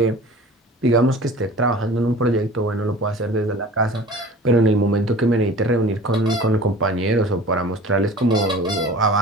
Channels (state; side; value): normal; both; correlation 0.42